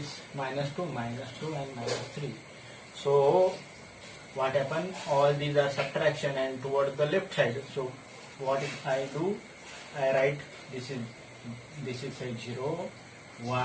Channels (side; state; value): both; identical; correlation 1.00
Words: minus 2 and minus 3. So what happened? All these are subtraction and toward the left side. So what I do? I write this is say 0,